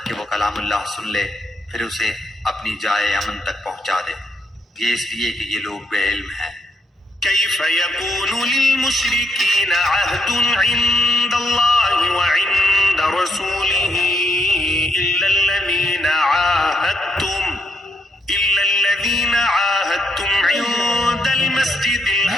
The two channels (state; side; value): normal; both; correlation 0.77